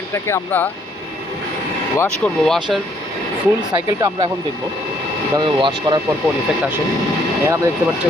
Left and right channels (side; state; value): both; normal; correlation 0.67